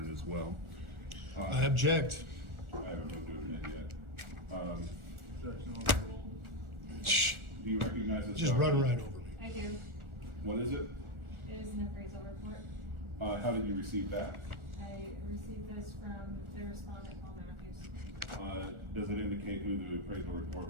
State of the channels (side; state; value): left; late; 1.4 ms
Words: as well. I object. I haven't moved to admit yet. Objection overruled. Shh. Do you recognize this? Just run document? right over me. I do. What is it? It is an appraisal report. How did you receive that? I received this from the respondent, Paul Matthews. Does it indicate who the appraisal report